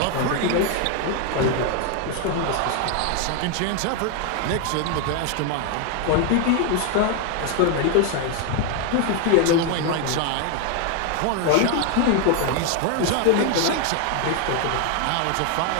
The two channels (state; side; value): different; both; correlation 0.01